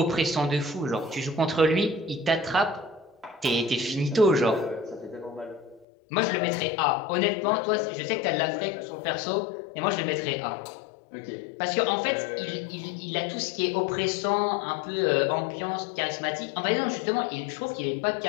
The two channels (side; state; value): right; drops out; at 5.9 s